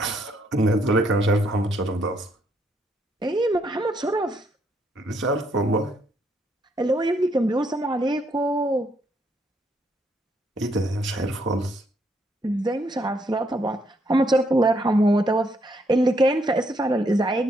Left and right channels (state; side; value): normal; both; correlation 0.73